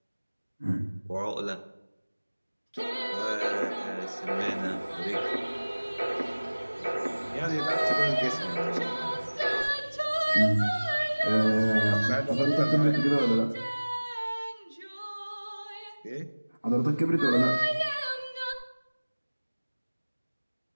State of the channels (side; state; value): both; inverted; correlation -1.00